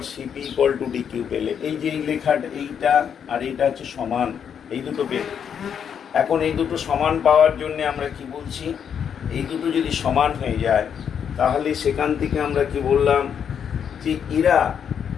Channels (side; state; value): right; quieter; 7.9 dB